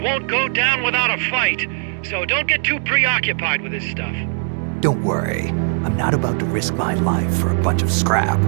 won't go down without a fight, so don't get too preoccupied with this stuff. Don't worry. I'm not about to risk my life for a bunch of scrap.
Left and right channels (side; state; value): left; silent; 63 dB below the other